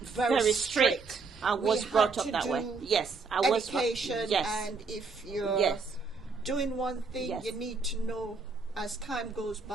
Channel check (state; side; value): quieter; left; 4.3 dB